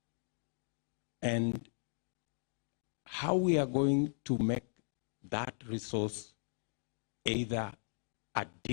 And how we are going to make that resource either a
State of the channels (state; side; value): silent; right; digital silence